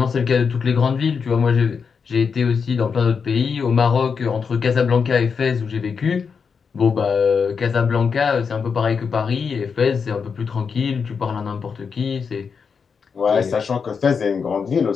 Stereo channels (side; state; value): right; quieter; 5.9 dB